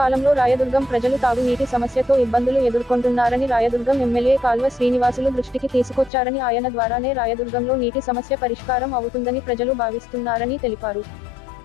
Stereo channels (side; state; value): right; drops out; at 6.1 s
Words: రాయదుర్గం ప్రజలు తాగునీటి సమస్యతో ఇబ్బందులు ఎదుర్కొంటున్నారని, రాయదుర్గం ఎమ్మెల్యే కాల్వ శ్రీనివాసులు దృష్టికి తీసుకొచ్చారని, ఆయన ద్వారానే రాయదుర్గంలో నీటి సమస్య పరిష్కారం అవుతుందని ప్రజలు భావిస్తున్నారని తెలిపారు.